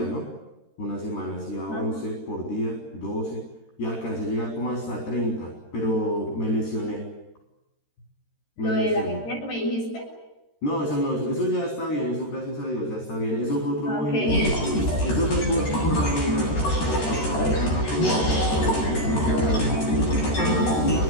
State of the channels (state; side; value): late; right; 13 ms